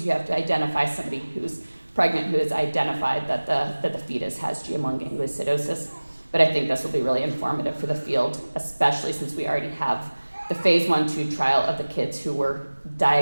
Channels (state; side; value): inverted; both; correlation -1.00